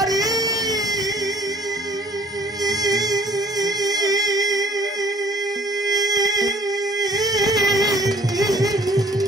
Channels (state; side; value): normal; both; correlation 0.54